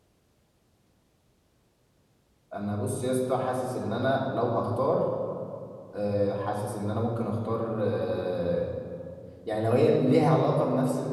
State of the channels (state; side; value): identical; both; correlation 1.00